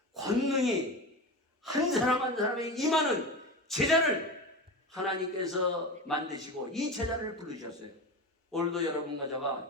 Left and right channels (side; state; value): both; normal; correlation 0.26